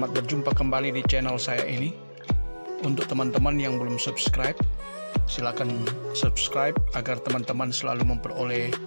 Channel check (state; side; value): inverted; both; correlation -1.00